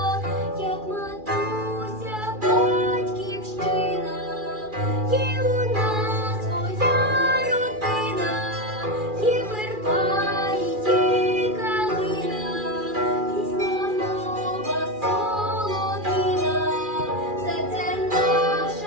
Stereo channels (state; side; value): late; left; 2.4 ms